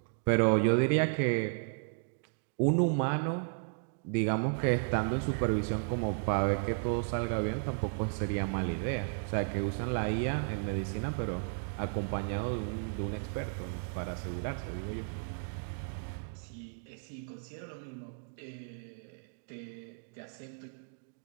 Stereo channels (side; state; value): left; silent; digital silence